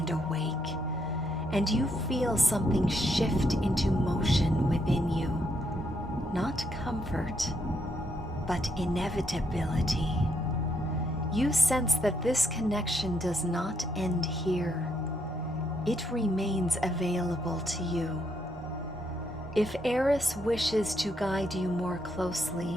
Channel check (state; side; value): normal; both; correlation 0.76